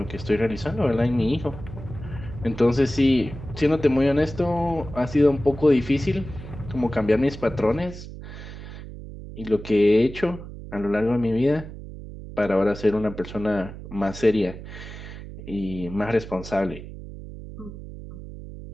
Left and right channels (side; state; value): right; noise; hum, 12 dB below the sound